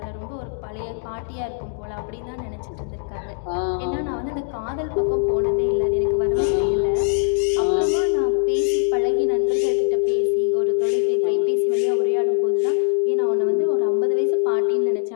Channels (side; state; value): right; silent; digital silence